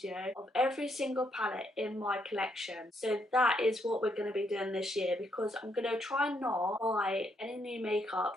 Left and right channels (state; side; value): normal; both; correlation 0.75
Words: of every single palette in my collection. So that is what we're going to be doing this year, because I'm going to try and not buy any new makeup